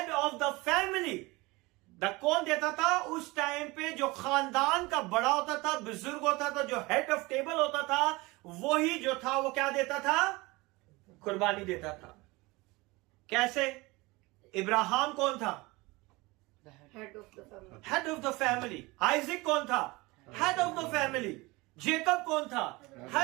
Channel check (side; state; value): left; quieter; 23.0 dB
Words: of the family. कौन देता था उस टाइम पे? जो खानदान का बड़ा होता था, बुजुर्ग होता था, जो हेड ऑफ टेबल होता था, वही जो था वो क्या देता था? कुर्बानी देता था। कैसे? इब्राहिम कौन था? Head of the family. Head of the family. Isaac कौन था? Head of the family. Jacob कौन था?